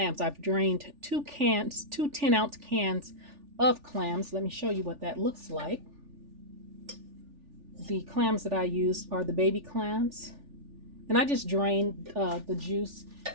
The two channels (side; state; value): left; late; 3.4 ms